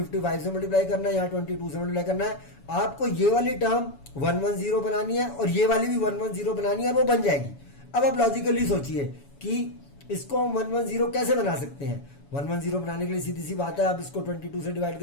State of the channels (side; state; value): right; late; 7.1 ms